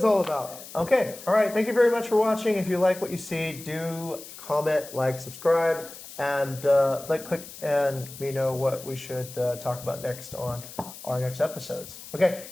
all about. Okay. All right. Thank you very much for watching. If you like what you see, do comment, like, subscribe, and click and let me know what we should talk about next on our next episodes. Okay.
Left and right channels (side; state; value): left; noise; hiss, 15 dB below the sound